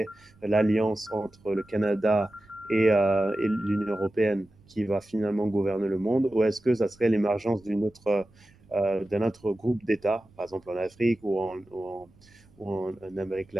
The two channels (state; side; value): noise; right; rumble, 28 dB below the sound